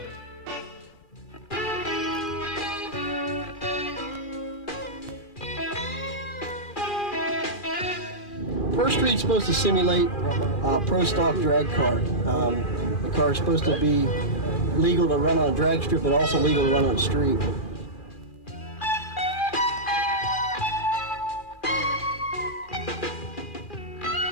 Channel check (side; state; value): right; late; 2.4 ms